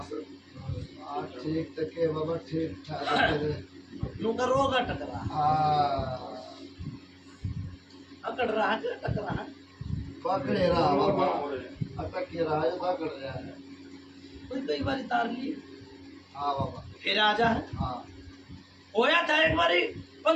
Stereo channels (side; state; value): both; identical; correlation 1.00